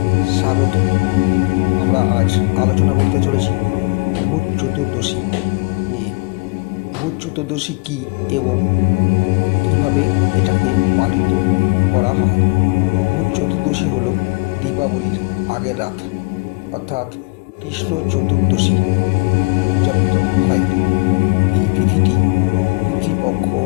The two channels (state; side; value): quieter; right; 29.1 dB